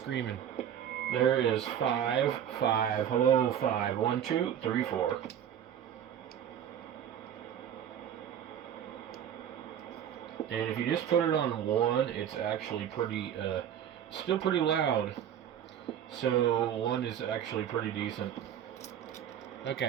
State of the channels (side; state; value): left; quieter; 9.6 dB